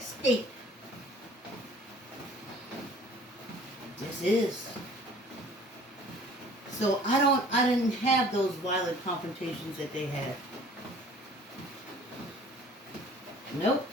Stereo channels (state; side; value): normal; both; correlation 0.51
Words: state. This is. So I didn't have those violent confrontations that they had. Nope.